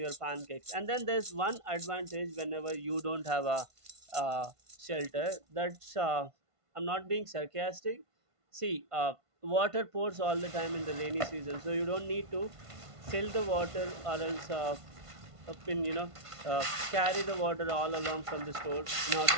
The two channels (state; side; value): late; left; 1.5 ms